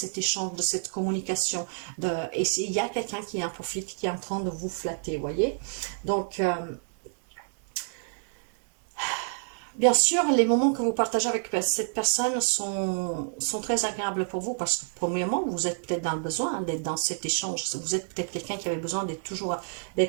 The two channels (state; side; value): silent; left; digital silence